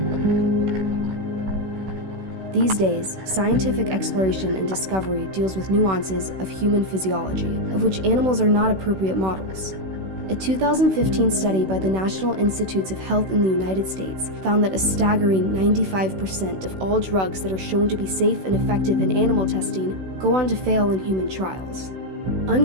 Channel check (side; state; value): left; late; 16 ms